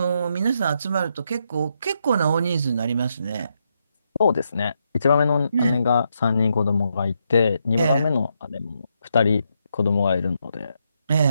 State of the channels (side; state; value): both; inverted; correlation -0.80